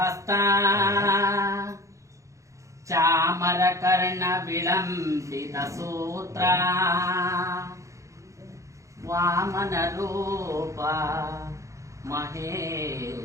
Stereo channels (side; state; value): left; late; 0.15 ms